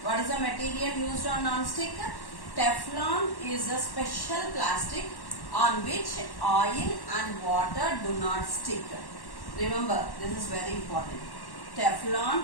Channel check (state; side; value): late; right; 1.1 ms